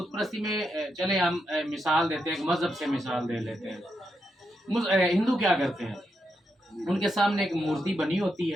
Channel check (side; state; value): both; normal; correlation 0.83